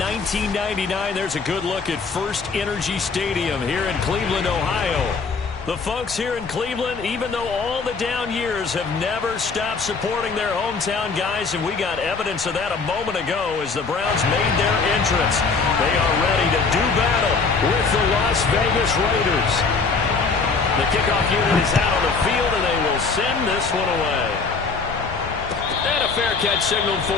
1999. There's a good look at First Energy Stadium here in Cleveland, Ohio. The folks here in Cleveland, even though all the down years, have never stopped supporting their hometown guys, and we got evidence of that a moment ago as the Browns made their entrance. They are ready to do battle with the Las Vegas Raiders. The kickoff unit is out on the field, and they will send this one away. And a fair catch signaled for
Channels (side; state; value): right; quieter; 4.6 dB